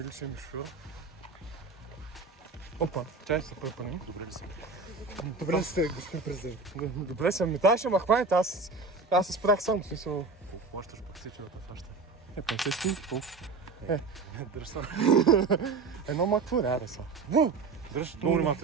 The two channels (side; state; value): left; quieter; 4.2 dB